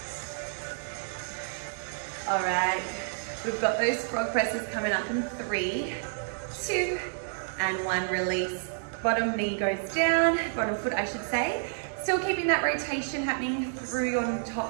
All right, we've got those frog presses coming up in 3, 2, and 1. Release. Bottom knee goes down, bottom foot I should say. Still keeping that rotation happening through your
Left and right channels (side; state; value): left; silent; digital silence